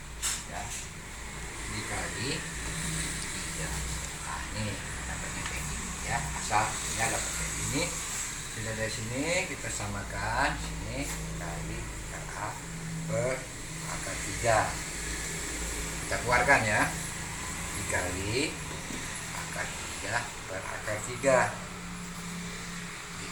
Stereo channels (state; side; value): identical; both; correlation 1.00